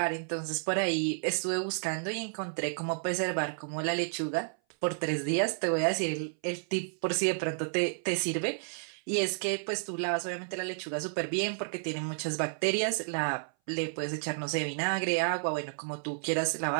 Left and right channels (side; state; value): left; silent; 57 dB below the other